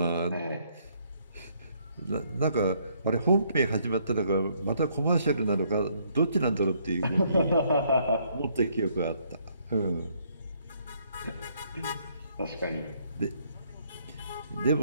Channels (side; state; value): both; inverted; correlation -0.68